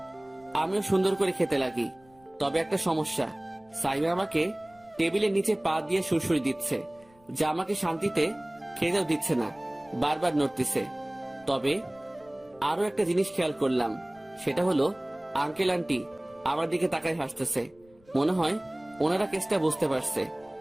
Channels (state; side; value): noise; left; rumble, 29 dB below the sound